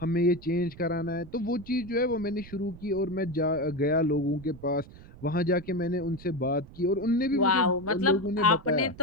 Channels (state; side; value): noise; right; rumble, 18 dB below the sound